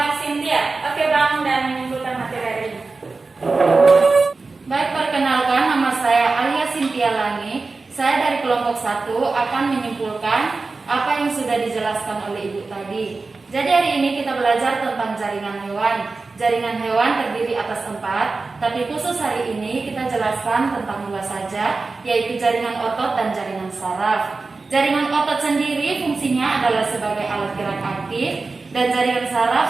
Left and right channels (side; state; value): left; quieter; 3.9 dB